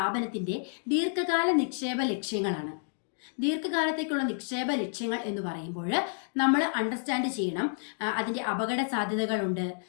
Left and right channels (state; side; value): silent; right; digital silence